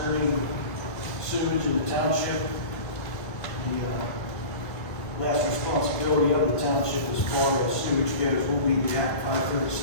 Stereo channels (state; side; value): late; right; 2.0 ms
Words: sewage in the township. The last responsibility of the township as far as sewage goes will be the Act